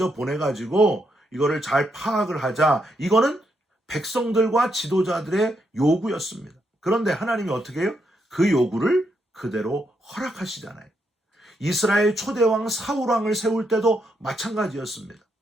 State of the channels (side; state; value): both; normal; correlation 0.79